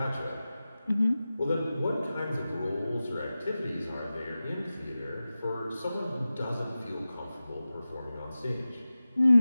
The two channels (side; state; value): both; inverted; correlation -0.95